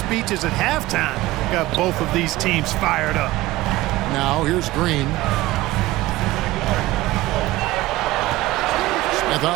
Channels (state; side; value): quieter; left; 17.8 dB